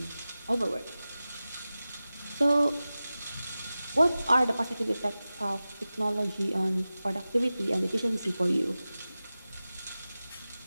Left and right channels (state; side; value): inverted; both; correlation -0.96